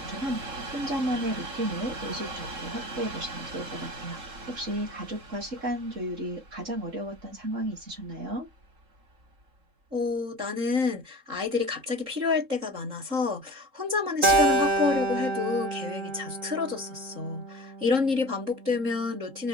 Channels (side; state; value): left; late; 3.7 ms